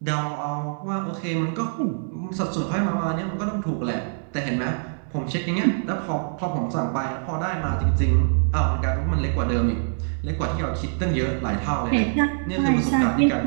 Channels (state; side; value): silent; left; 62 dB below the other